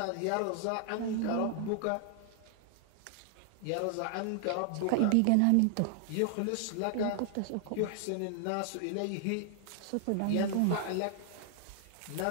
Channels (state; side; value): different; both; correlation 0.00